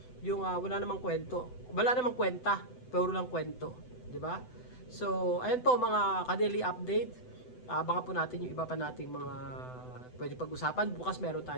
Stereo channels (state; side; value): late; right; 7.9 ms